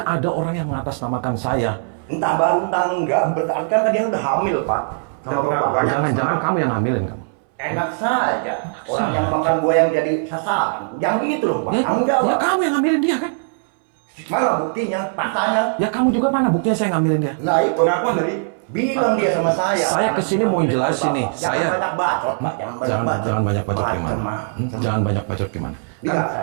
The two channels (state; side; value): silent; left; 63 dB below the other